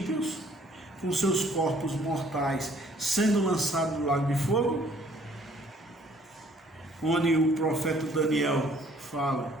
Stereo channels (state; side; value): normal; both; correlation 0.60